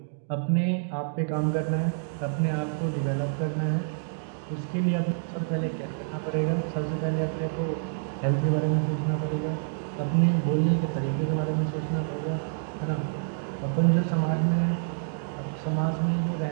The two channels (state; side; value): silent; left; digital silence